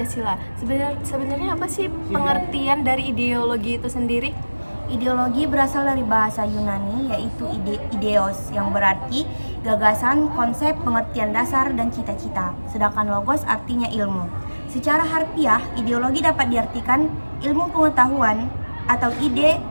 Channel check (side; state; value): both; inverted; correlation -1.00